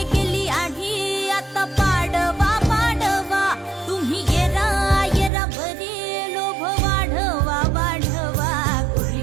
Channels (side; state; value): left; drops out; at 5.3 s